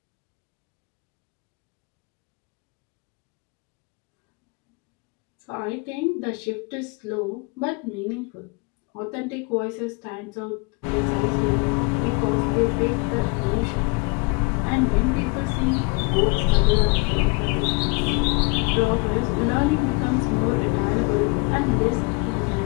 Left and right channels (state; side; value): quieter; right; 29.5 dB